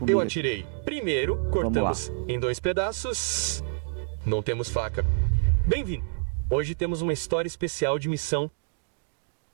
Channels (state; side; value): silent; left; digital silence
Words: Eu atirei. Primeiro, cortamos em 2 pedaços. Não temos faca. Bem-vindo. Hoje temos uma história especial de missão.